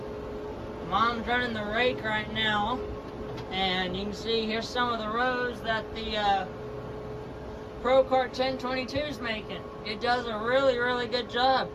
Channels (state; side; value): identical; both; correlation 1.00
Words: Mom's running the rake right now, and you can see here's some of the rows that the Pro Kart 1022 is making. It does a really, really good job.